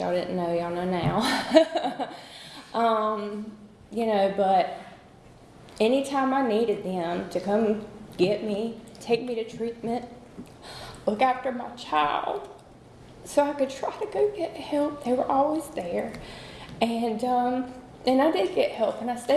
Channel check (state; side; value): identical; both; correlation 1.00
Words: didn't know. Y'all know now. You know, but anytime I needed them to come get me, take me to treatment, look after my child, so I could try to go get help, they were always there. And I did get help, and I